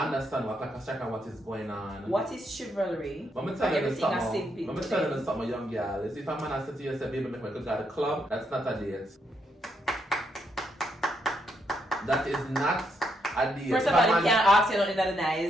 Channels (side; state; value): both; normal; correlation 0.77